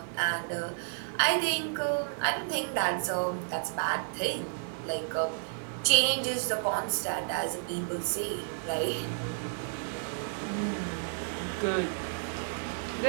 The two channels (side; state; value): left; silent; digital silence